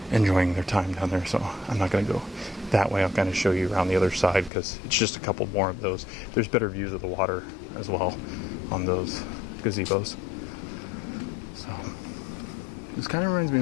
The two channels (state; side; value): drops out; right; at 4.5 s